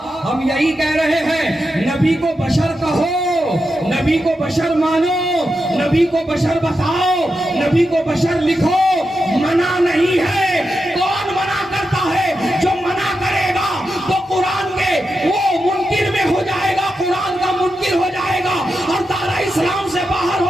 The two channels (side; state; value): both; normal; correlation 0.88